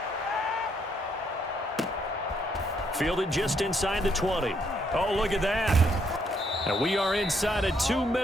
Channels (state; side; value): normal; both; correlation 0.72